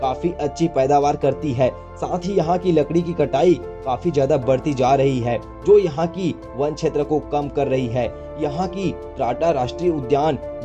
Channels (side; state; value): both; identical; correlation 1.00